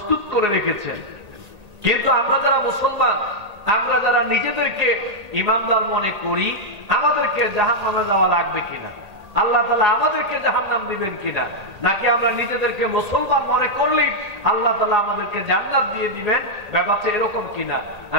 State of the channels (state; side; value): late; left; 1.8 ms